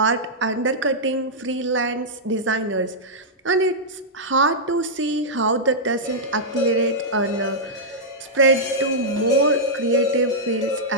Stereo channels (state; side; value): normal; both; correlation -0.09